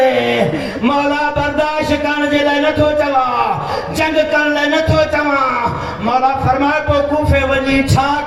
मौला बर्दाश्त करण जे लाइ नथो चवां जंग करण लाइ नथो चवां मौला फरमायो पोइ कूफे वञी छा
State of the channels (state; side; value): identical; both; correlation 1.00